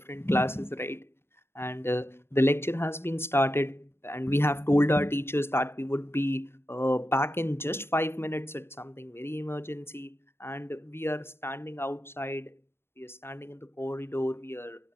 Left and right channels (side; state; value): right; late; 0.12 ms